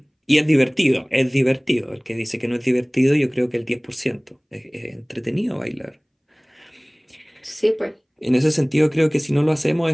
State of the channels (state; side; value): identical; both; correlation 1.00